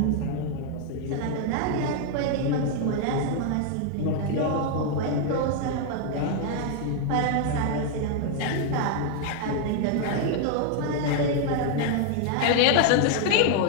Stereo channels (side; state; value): both; different; correlation 0.00